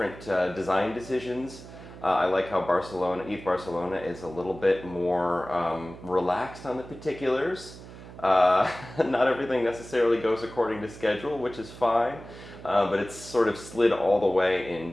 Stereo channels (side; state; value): right; noise; hum, 16 dB below the sound